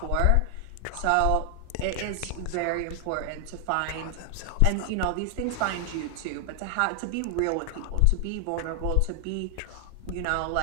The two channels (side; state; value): both; different; correlation 0.00